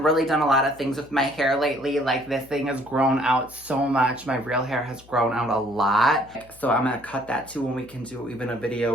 really done a lot of things with my hair lately. Like this thing has grown out so much. My real hair has grown out a lot. So I'm gonna cut that too, and we can do even a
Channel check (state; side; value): noise; left; hum, 25 dB below the sound